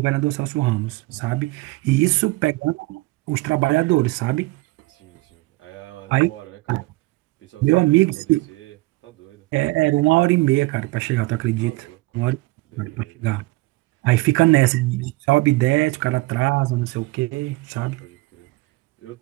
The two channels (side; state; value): left; quieter; 21.5 dB